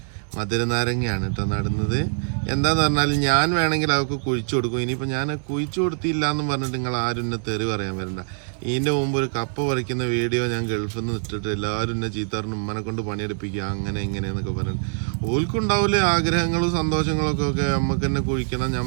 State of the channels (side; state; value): left; silent; digital silence